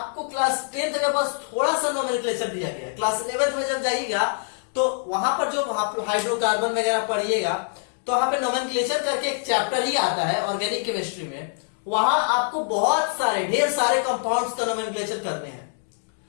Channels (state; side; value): silent; right; digital silence